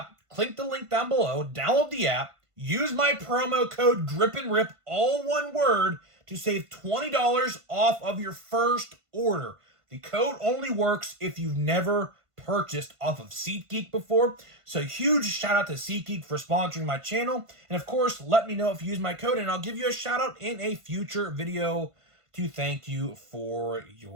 click the link down below, download the app, use my promo code GRIPANDRIP, all one word, to save $20 off of your first order. The code only works if you've never purchased off of SeatGeek before. So huge shout out to SeatGeek for sponsoring my channel. And of course, let me know if you use my code and I'll give you a shout out in a future video to thank you for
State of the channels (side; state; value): left; late; 1.5 ms